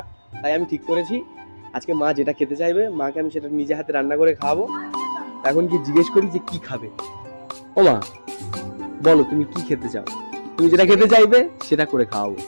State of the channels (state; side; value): inverted; both; correlation -1.00